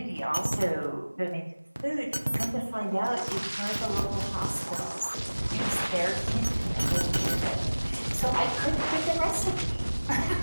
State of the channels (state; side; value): inverted; both; correlation -1.00